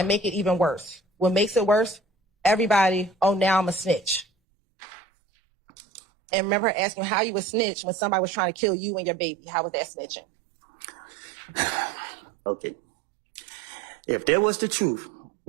make it even worse. What makes it worse? Everybody, oh, now I'm a snitch. And remember her asking how you a snitch when somebody was trying to kill you and your baby. How was that snitching? Okay. If there was the truth,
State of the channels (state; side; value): drops out; left; at 4.2 s